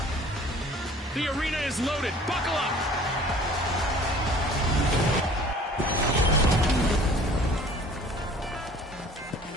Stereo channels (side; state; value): both; normal; correlation 0.50